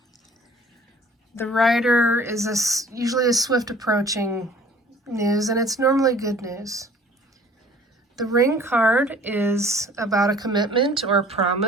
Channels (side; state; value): both; normal; correlation 0.51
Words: The Rider is usually a swift approaching news, and it's normally good news. The Ring card is about a commitment or a